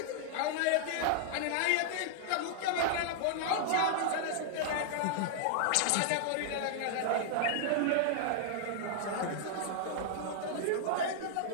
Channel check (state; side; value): different; both; correlation -0.01